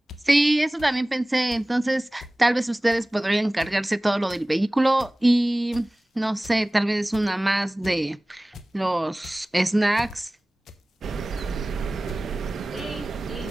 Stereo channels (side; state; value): both; normal; correlation 0.98